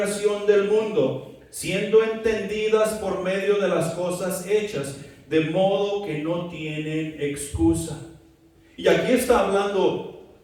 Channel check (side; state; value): both; identical; correlation 1.00